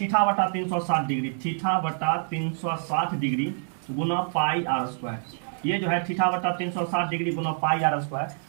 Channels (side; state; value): left; silent; digital silence